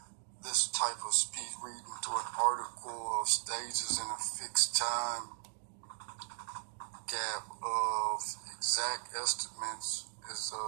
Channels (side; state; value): left; silent; digital silence